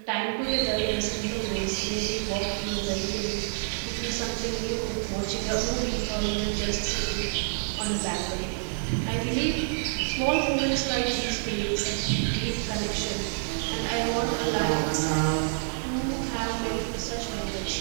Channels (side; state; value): left; silent; digital silence